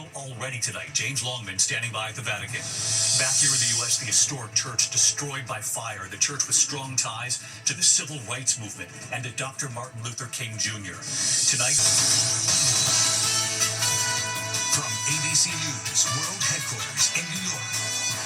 already tonight. James Longman standing by at the Vatican. Back here in the U.S., the historic church destroyed by fire. The church with strong ties to the civil rights movement and to Dr. Martin Luther King Jr. Tonight, from ABC News World Headquarters in New York,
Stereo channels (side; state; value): both; identical; correlation 1.00